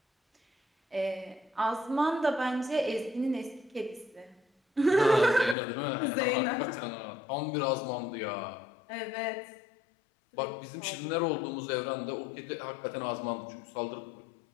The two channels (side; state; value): right; drops out; at 5.6 s